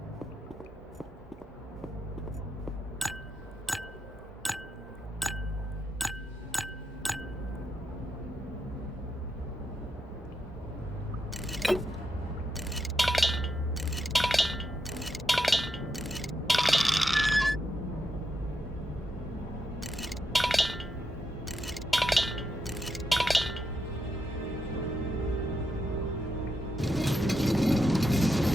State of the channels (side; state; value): both; normal; correlation 0.83